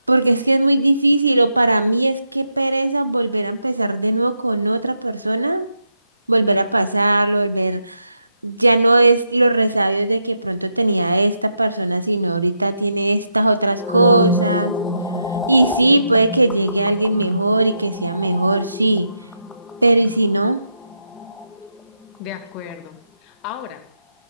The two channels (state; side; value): inverted; both; correlation -0.84